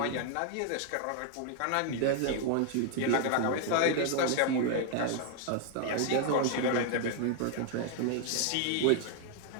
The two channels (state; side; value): different; both; correlation 0.00